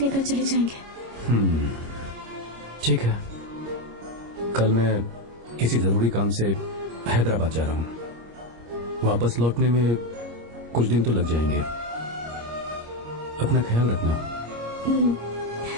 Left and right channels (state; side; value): late; left; 25 ms